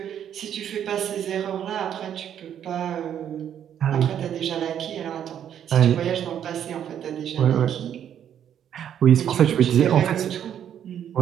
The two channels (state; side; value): quieter; left; 9.6 dB